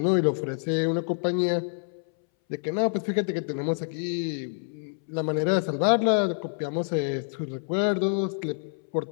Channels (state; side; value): silent; right; 60 dB below the other